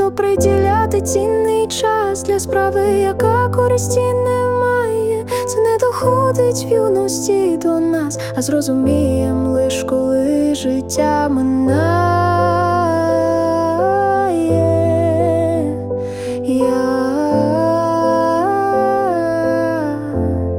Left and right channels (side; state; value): left; noise; rumble, 25 dB below the sound